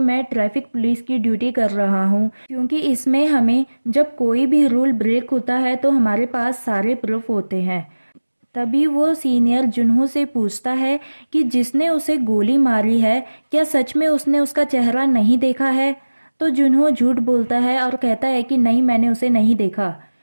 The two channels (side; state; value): both; inverted; correlation -1.00